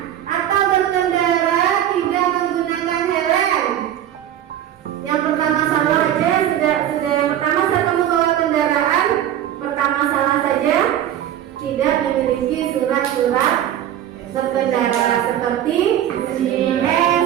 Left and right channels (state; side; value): quieter; left; 11.2 dB